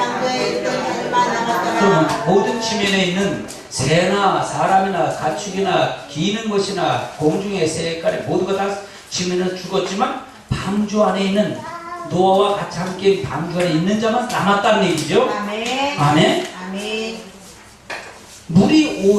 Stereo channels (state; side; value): identical; both; correlation 1.00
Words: 있던 자들만 남았더라. 그러면 모든 지면에 있는 새나 사람이나 가축이나 기는 것이나 공중의 새까지 모두가 다 지면에 죽었지만 방주 안에 있는 노아와 같이 함께 방주 안에 있는 자만 남았다는 얘기죠. 아멘. 아멘. 아멘. 물이